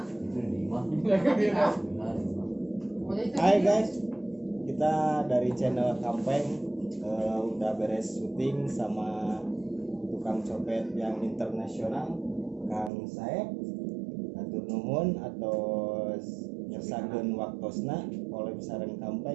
Hai guys, kita dari channel Kampeng udah beres syuting sama tukang copet yang internasional, Kang Saeb, atur nuhun atau ngersakeun waktosna oleh sareng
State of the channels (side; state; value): left; drops out; at 12.9 s